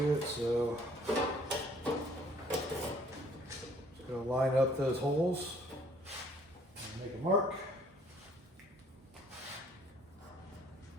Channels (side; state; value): both; normal; correlation 0.60